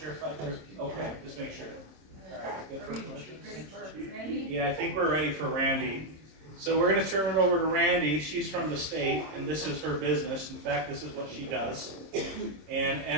if I did. Okay, just make sure. All right, good for questions. Ready for Randy? Yeah, I think we're ready for Randy. So we're gonna turn it over to Randy. She's from the state, and this is her business. In fact, this is what she does. And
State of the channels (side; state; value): left; late; 26 ms